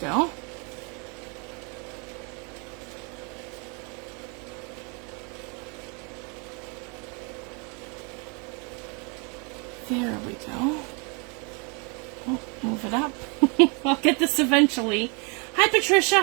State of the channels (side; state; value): left; quieter; 32.9 dB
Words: There we go. Oh, move it up. I'll get this eventually. Hi